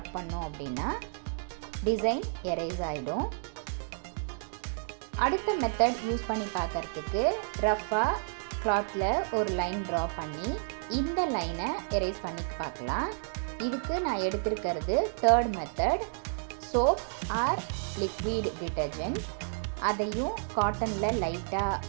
பண்ணோம் அப்படின்னா டிசைன் எரேஸ் ஆகிடும். அடுத்த மெத்தட் யூஸ் பண்ணி பார்க்குறதுக்கு ரஃப்பாக கிளாத்தில் ஒரு லைன் ட்ரா பண்ணி இந்த லைனை எரேஸ் பண்ணி பார்க்கலாம். இதுக்கு நான் எடுத்திருக்கிறது third method, soap or liquid detergent. அதையும் காட்டனில் லைட்டாக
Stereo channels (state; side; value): silent; left; digital silence